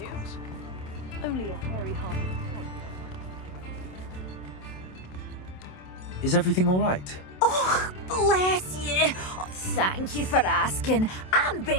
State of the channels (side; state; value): right; late; 27 ms